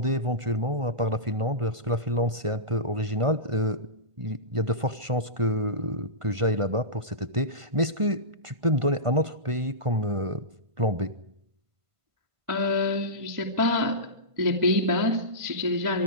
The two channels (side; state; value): left; late; 1.5 ms